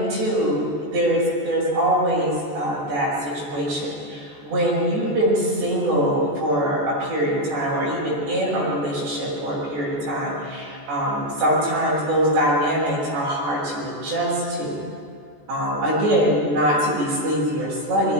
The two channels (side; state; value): left; late; 14 ms